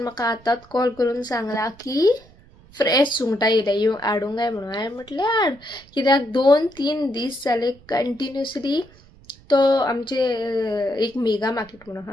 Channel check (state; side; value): noise; right; rumble, 26 dB below the sound